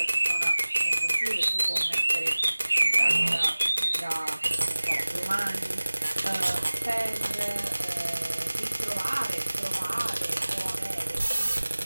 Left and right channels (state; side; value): inverted; both; correlation -1.00